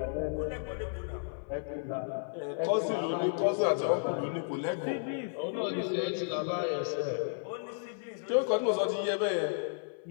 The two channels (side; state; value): right; silent; 56 dB below the other